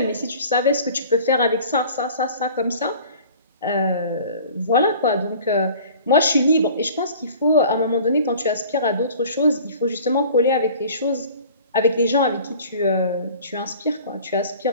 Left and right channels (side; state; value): both; inverted; correlation -0.46